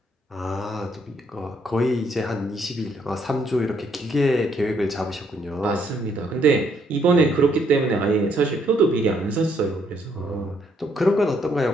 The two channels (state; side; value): normal; both; correlation 0.71